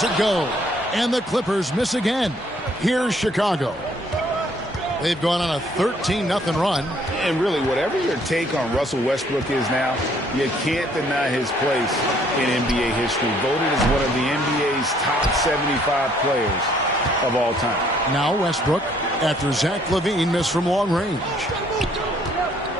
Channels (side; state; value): both; normal; correlation 0.63